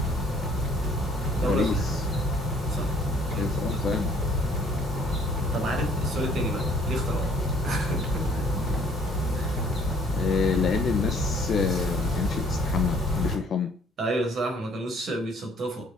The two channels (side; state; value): both; normal; correlation 0.59